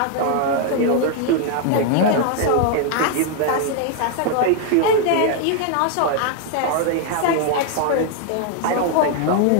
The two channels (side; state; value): both; different; correlation 0.00